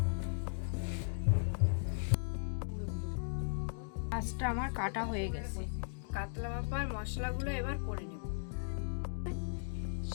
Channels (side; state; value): right; silent; digital silence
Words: মাছটা আমার কাটা হয়ে গেছে। কাতলা ভাপার মশলাগুলো এবার করে নেব।